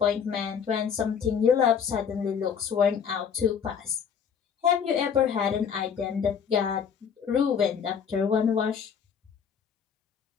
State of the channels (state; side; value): quieter; right; 7.3 dB